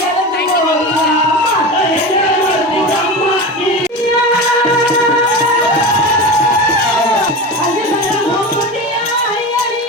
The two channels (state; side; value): normal; both; correlation 0.26